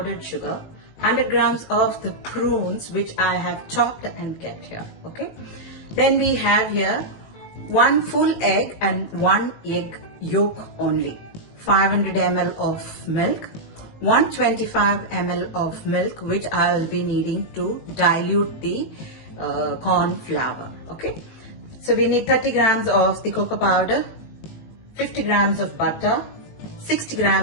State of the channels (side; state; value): right; late; 19 ms